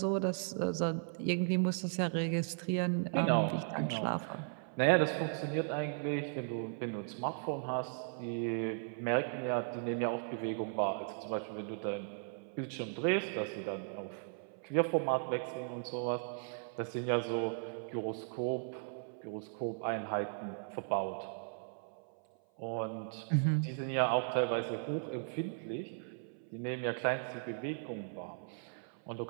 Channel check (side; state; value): left; silent; 53 dB below the other